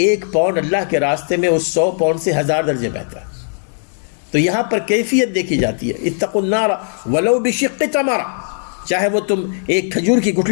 1 پاؤنڈ اللہ کے راستے میں اس 100 پاؤنڈ سے 1000 درجے بہتر ہے۔ تو یہاں پر کیفیت دیکھی جاتی ہے۔ اتقوا النار ولو بشق تمرہ، چاہے وہ تم ایک کھجور کی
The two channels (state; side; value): silent; right; 68 dB below the other